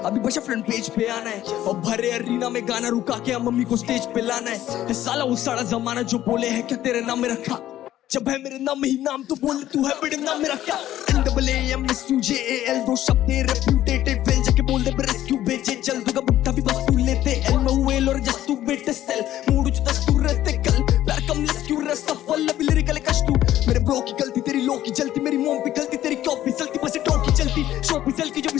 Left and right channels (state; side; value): quieter; right; 13.1 dB